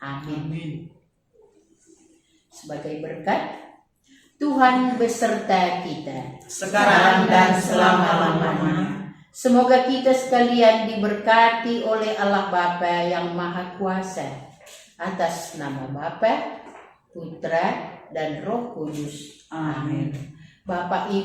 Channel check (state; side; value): identical; both; correlation 1.00